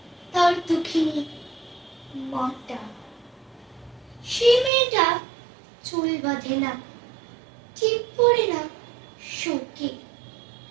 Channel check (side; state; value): left; drops out; at 4.7 s